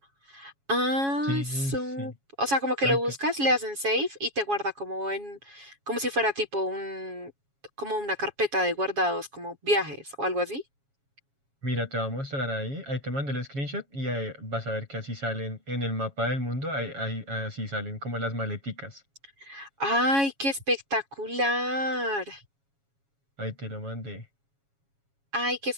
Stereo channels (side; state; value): left; late; 7.2 ms